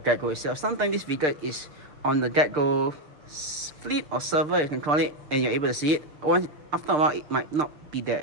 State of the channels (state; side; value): late; left; 6.7 ms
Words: GetGo itself, sometimes this vehicle is on the GetGo fleet or server, you can call it, and you're able to see it. After a while it might not be there